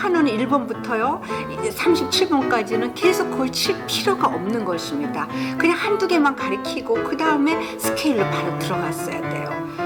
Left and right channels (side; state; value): both; identical; correlation 1.00